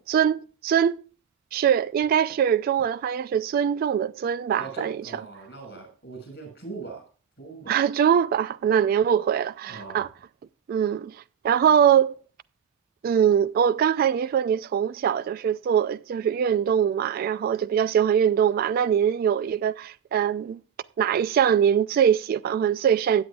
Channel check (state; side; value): quieter; left; 8.2 dB